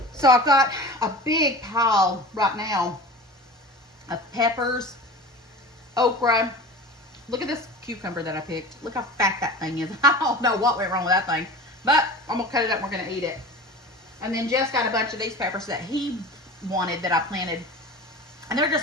So I've got a big pile right now of peppers, okra. Look at this cucumber that I picked. Look how fat that thing is. I don't know what went wrong with that thing. But I'm going to cut it up and we're going to eat it. And then Jess got a bunch of these peppers that he wanted that I planted. And they're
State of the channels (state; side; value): normal; both; correlation 0.35